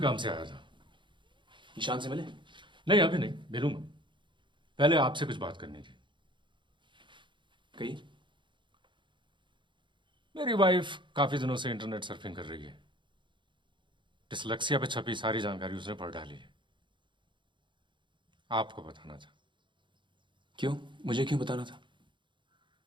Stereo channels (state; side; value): late; left; 0.23 ms